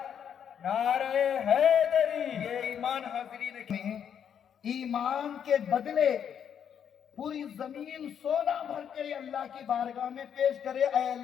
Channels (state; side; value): quieter; right; 8.4 dB